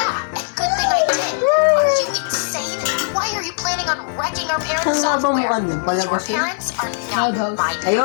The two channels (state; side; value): silent; right; digital silence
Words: and good thing I did. Are you insane? Why are you planning on wrecking our parents' Saan nga ba software? mukha niyan? Your Palabas yun? parents are not Loud house. my